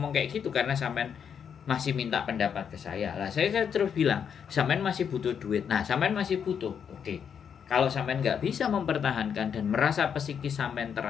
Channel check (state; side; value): quieter; right; 7.6 dB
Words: kayak gitu karena sampean masih minta pendapat ke saya. Lah saya terus bilang, sampean masih butuh duit. Nah, sampean masih butuh. Oke. Kalau sampean nggak bisa mempertahankan dan merasa psikis sampean